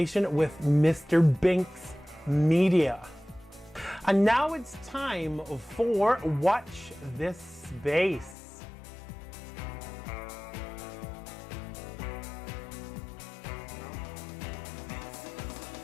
with Mr. Binks Media. And now it's time for Watch This Space.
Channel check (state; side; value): drops out; right; at 8.3 s